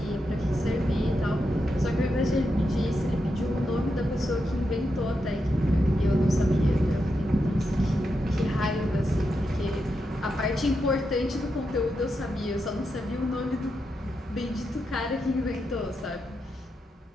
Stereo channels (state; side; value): normal; both; correlation 0.85